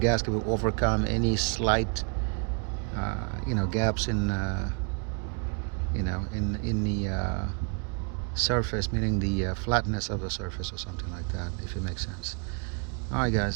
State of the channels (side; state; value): left; quieter; 36.8 dB